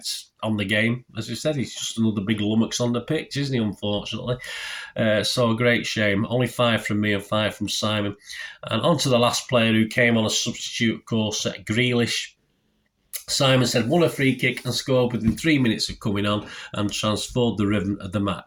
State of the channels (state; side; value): identical; both; correlation 1.00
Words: on the game, as I said, he's just another big lummox on the pitch, isn't he, unfortunately? So a great shame. Only 5 from me and 5 from Simon. And on to the last player who came on a substitute, of course, Grealish. Simon said, won a free kick and scored within 3 minutes of coming on and transformed the rhythm of the